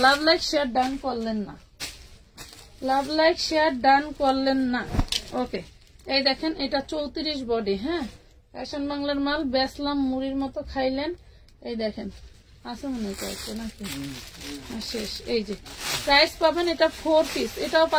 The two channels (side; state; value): both; identical; correlation 1.00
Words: লাভ লাইক শেয়ার ডান করলেন না লাভ লাইক শেয়ার ডান করলেন না। ওকে, এই দেখেন এটা 34 বডি। হ্যাঁ, ফ্যাশন বাংলার মাল, বেসলাম মুড়ির মতো খাইলেন। এই দেখেন আছে মনে করছে নাকি শেষ। এই যে প্রাইস পাবেন, এটা 4 পিস, এটাও